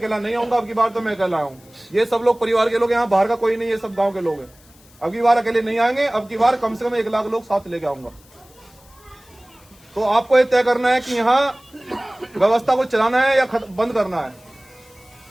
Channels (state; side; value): noise; left; hiss, 28 dB below the sound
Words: नहीं आऊंगा, अब की बार तो मैं अकेला आऊं। ये सब लोग परिवार के लोग, यहाँ बाहर का कोई नहीं, ये सब गांव के लोग हैं। अब की बार अकेले नहीं आएंगे, अब की बार कम से कम 1 लाख लोग साथ लेके आऊंगा। तो आपको ये तय करना है कि यहाँ व्यवस्था को चलाना है या बंद करना है।